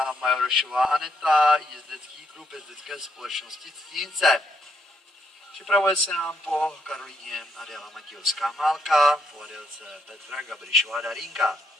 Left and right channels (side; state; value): both; normal; correlation 0.76